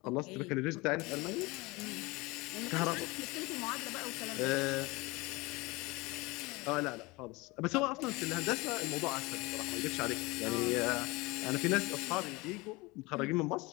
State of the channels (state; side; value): quieter; right; 23.8 dB